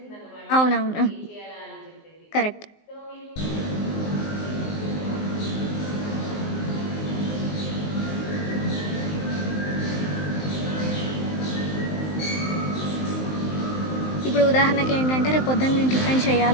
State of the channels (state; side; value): late; right; 19 ms